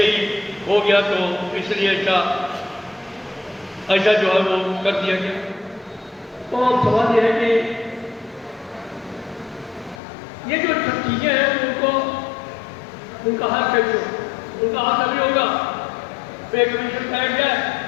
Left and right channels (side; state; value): right; drops out; at 10.0 s